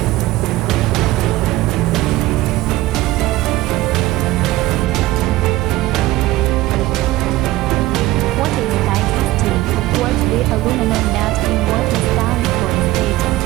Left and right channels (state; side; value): quieter; left; 17.4 dB